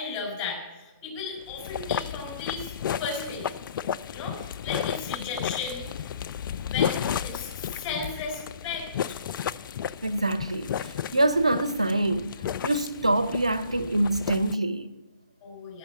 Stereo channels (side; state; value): both; inverted; correlation -0.63